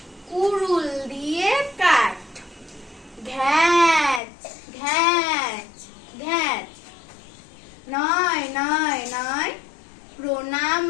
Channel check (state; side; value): drops out; right; at 4.2 s